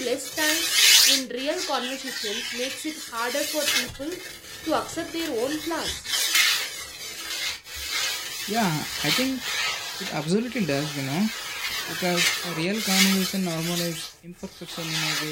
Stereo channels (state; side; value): identical; both; correlation 1.00